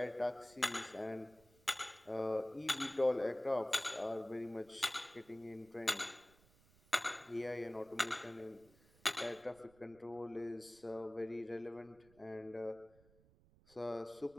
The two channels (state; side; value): noise; right; rumble, 28 dB below the sound